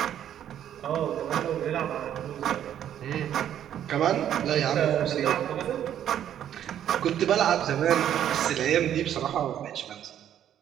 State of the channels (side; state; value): left; quieter; 10.4 dB